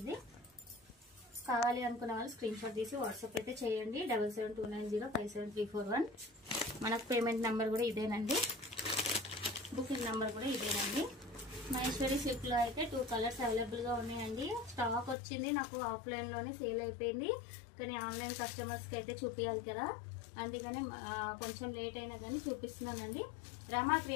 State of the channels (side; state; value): right; drops out; at 15.2 s